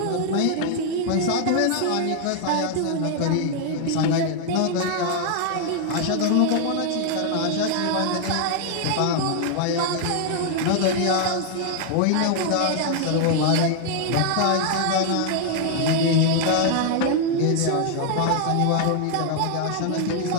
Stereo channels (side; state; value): both; different; correlation 0.00